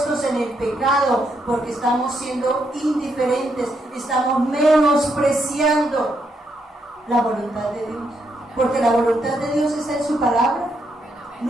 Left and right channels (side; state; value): both; normal; correlation 0.78